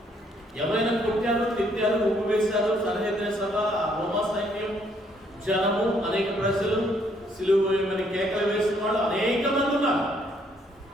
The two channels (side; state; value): both; normal; correlation 0.68